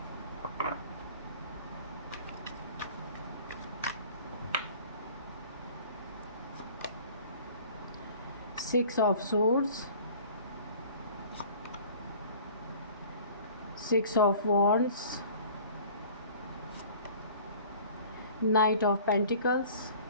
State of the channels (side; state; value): both; inverted; correlation -0.47